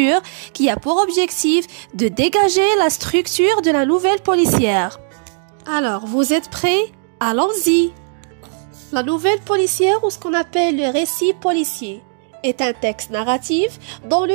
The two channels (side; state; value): left; silent; digital silence